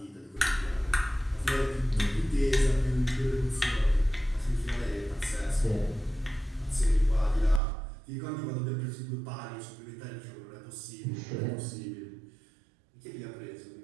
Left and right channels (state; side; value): drops out; left; at 7.6 s